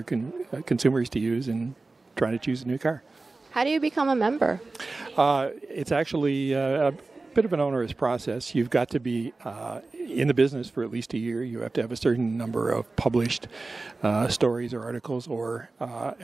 consumers to use in trying to choose a new car. How do you become a member? It's actually a bit of an onerous process. You've got to be in the business for at least a year. You have to have a certain number of published stories or articles, or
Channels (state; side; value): quieter; left; 3.5 dB